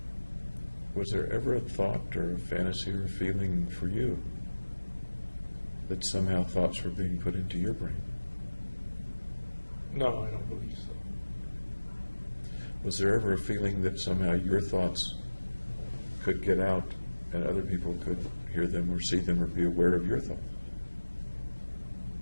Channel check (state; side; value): inverted; both; correlation -1.00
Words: was there ever a thought or a fantasy or a feeling for you that somehow thoughts were being put into your brain? No, I don't believe so. Was there ever a feeling that somehow your thoughts could get out and other people could hear them or see them or be aware of your thoughts?